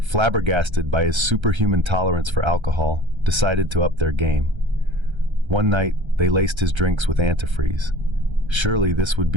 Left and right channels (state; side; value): late; left; 1.3 ms